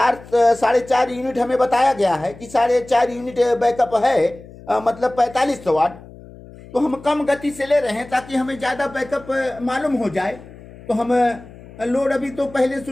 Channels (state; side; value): noise; left; hum, 19 dB below the sound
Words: 4.5 यूनिट हमें बताया गया है कि 4.5 यूनिट बैकअप है, मतलब 4500 वाट। तो हम कम गति से ले रहे हैं ताकि हमें ज़्यादा बैकअप मालूम हो जाए। तो हम लोड अभी तो पहले